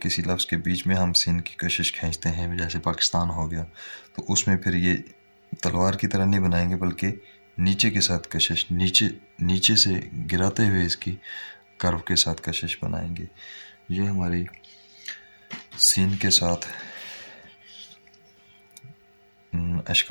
لفظ کے بیچ میں ہم سین کی کشش کھینچتے ہیں جیسے پاکستان ہو گیا تو اس میں پھر یہ تلوار کی طرح نہیں بنائیں گے بلکہ نیچے کے ساتھ کشش، نیچے سے گراتے ہوئے اس کی کرو کے ساتھ کشش بنائیں گے۔ یہ ہماری سین کے ساتھ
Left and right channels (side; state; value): both; inverted; correlation -1.00